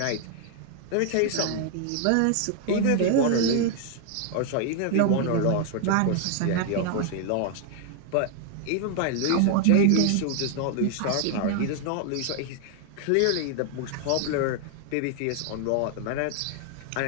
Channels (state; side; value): different; both; correlation 0.00